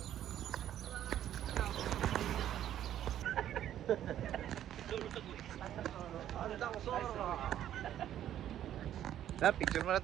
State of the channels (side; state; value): left; quieter; 11.3 dB